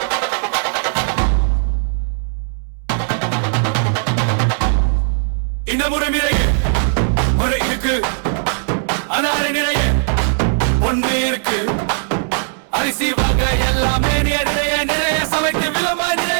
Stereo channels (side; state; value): left; silent; 67 dB below the other